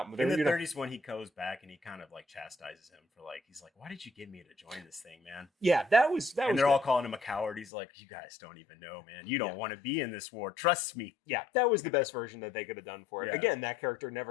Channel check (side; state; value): right; drops out; at 7.7 s